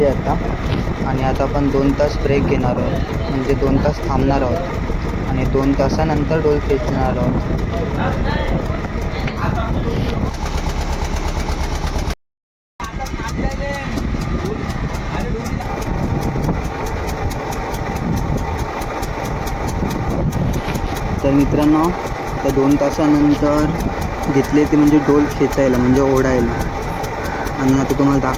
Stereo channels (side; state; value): both; identical; correlation 1.00